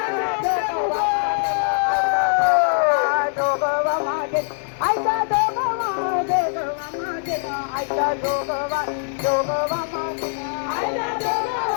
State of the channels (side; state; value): right; silent; digital silence